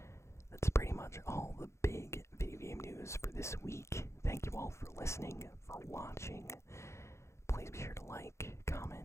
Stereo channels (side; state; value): right; late; 0.14 ms